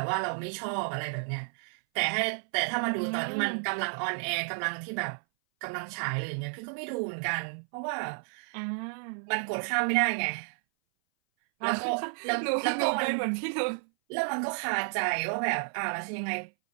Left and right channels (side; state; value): left; silent; 57 dB below the other